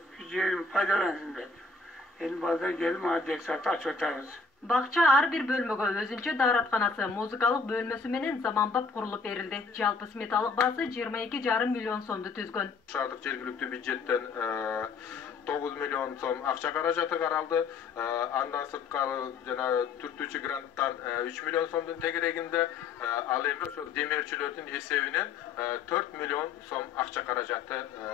Şu yerimi faydalansın dedim. Elim bazen geldim adres satı aç otarız. Бакча ар бир бөлмөгө өзүнчө дааратканасы, музыкалык бөлмөсү менен заманбап курулуп берилди. Жалпы сметалык баасы 22,5 миллион сомду түзгөн. Шаардык жергиликтүү бюджеттен 9 миллион сом акча каражаты каралды. Андан сырткары жана түртүүчү гранттан 3 миллион сомдун тегерегинде, ал эми ошо демирчилердин эсебинен 4 миллион сом акча каражаты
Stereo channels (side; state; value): right; quieter; 4.6 dB